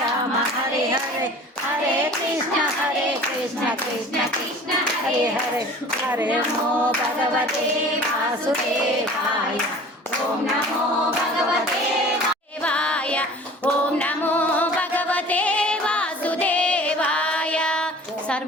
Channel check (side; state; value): both; normal; correlation 0.44